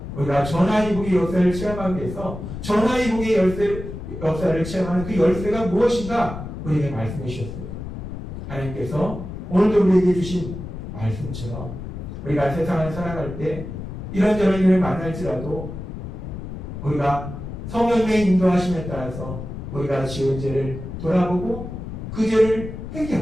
우리가 전화위복의 역사를 체험하기 위해서 전화위복의 역사를 체험하는 그 열쇠가 무엇인가 우리에게 말씀해 주셨어요. 하나님께서 오늘도 우리에게 주신 말씀처럼 우리가 세상을 살아갈 때 이런저런 일을 만날지라도 우리가 성령의 인도하심에 따라서 우리가 지은 죄를 돌아보고 그 죄를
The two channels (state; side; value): noise; left; rumble, 8 dB below the sound